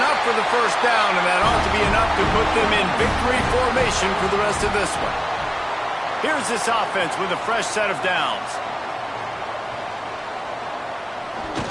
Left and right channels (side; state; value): both; identical; correlation 1.00